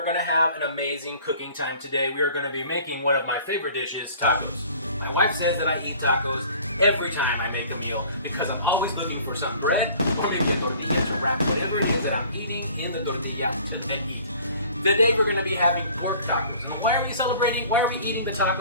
going to have an amazing cooking time today. We are going to be making one of my favorite dishes, tacos. My wife says that I eat tacos every time I make a meal because I'm always looking for some bread or maybe a tortilla to wrap whatever it is that I'm eating in the tortilla to then eat. Today we're going to be having pork tacos. Why are we celebrating? Why are we eating the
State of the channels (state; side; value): inverted; both; correlation -0.49